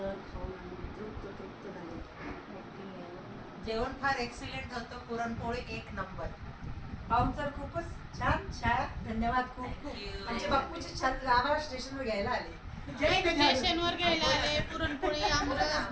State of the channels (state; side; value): identical; both; correlation 1.00